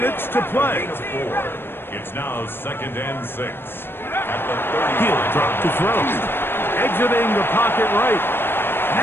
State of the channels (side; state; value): right; late; 0.10 ms